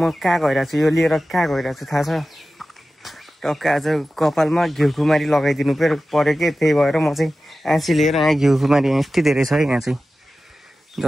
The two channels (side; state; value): both; normal; correlation 0.95